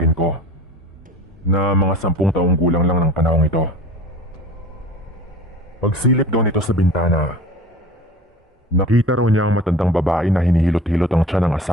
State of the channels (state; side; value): normal; both; correlation 0.40